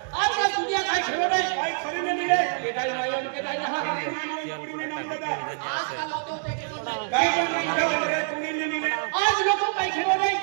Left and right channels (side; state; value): left; silent; digital silence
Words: आज का दुनिया का खेलो नहीं भाई खरी नहीं मिले के दाई माई उनके दाई यहाँ पूरी में नाम दादा आज का लोगों के खेलो नहीं काय रे पूरी नहीं मिले आज लोगों का खेलो नहीं